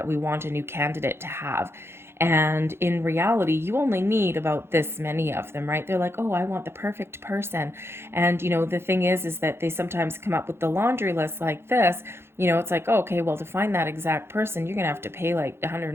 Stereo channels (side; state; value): left; late; 0.12 ms